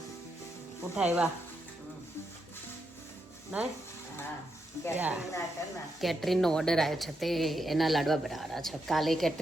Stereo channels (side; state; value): both; normal; correlation 0.83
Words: ઉઠા એવા નહીં કેટરીનનો ઓર્ડર આવ્યો છે તે એના લાડવા બનાવવાના છે. કાલે